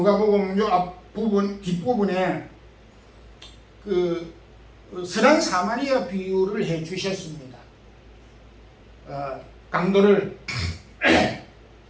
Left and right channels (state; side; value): identical; both; correlation 1.00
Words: 요 앞부분 뒷부분에 그 선한 사마리아 비유를 해 주셨습니다. 강도를